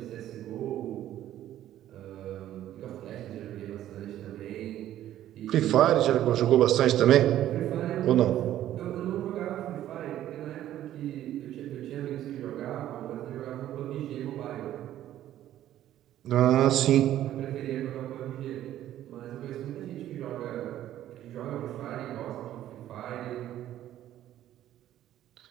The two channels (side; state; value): left; quieter; 12.5 dB